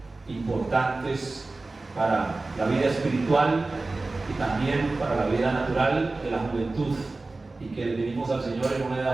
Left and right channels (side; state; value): left; quieter; 3.3 dB